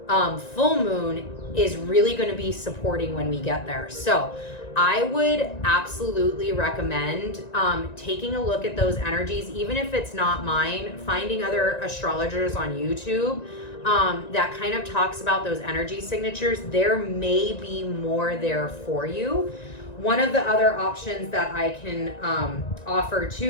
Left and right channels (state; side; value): late; right; 1.9 ms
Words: full moon is really going to be supporting when we get there. So I would absolutely recommend taking a look at those energies, even if it's not mine, finding other astrologers on YouTube that kind of talks about those energy signatures. There may be more there for you. One of the other options that I can offer